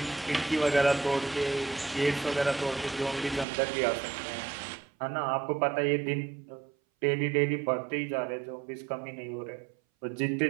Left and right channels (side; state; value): left; drops out; at 3.5 s